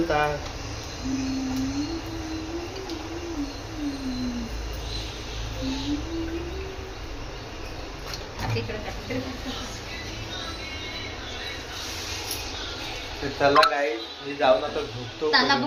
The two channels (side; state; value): both; identical; correlation 1.00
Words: का. चला गाई मी जाऊन आता झोपतो. ताला